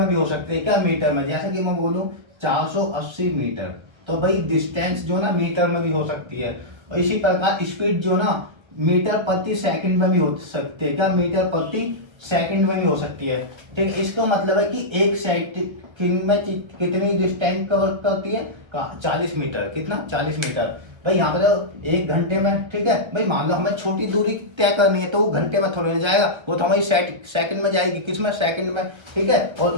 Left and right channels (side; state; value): left; late; 1.3 ms